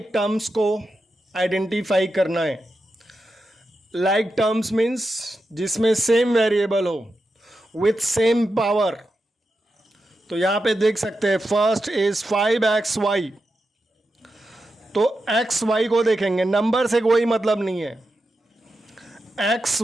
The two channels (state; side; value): normal; both; correlation 0.88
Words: terms को identify करना है। Like terms means जिसमें same variable हो with same power। तो यहाँ पे देख सकते हैं फर्स्ट इज 5xy, तो xy को देखेंगे, नंबर से कोई मतलब नहीं है। एक्स